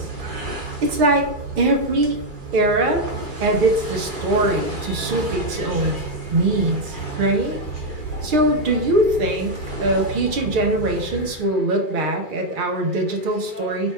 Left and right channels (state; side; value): late; left; 2.4 ms